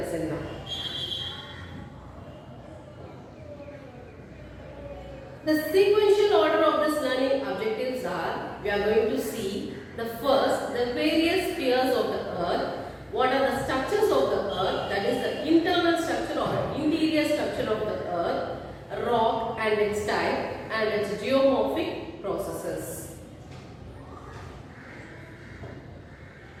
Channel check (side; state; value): both; identical; correlation 1.00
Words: now. The sequential order of this learning objectives are, we are going to see the first, the various spheres of the earth. What are the structures of the earth? That is the internal structure or interior structure of the earth, rock and its type, and its geomorphic processes.